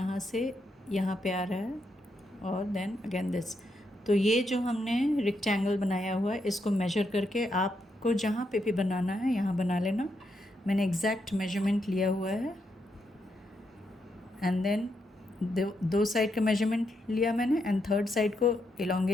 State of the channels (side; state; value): both; normal; correlation 0.80